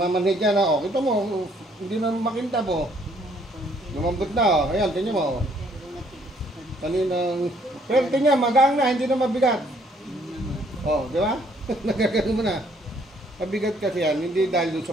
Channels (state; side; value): normal; both; correlation 0.65